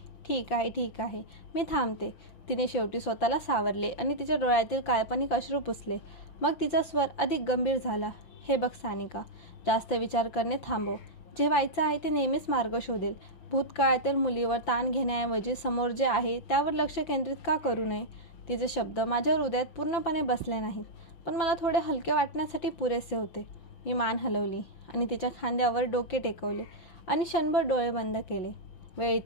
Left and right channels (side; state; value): right; late; 5.8 ms